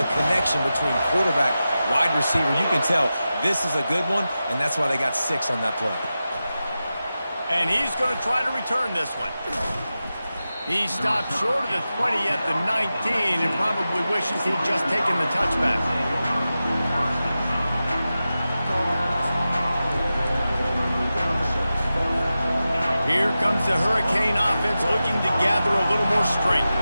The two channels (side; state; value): both; inverted; correlation -0.93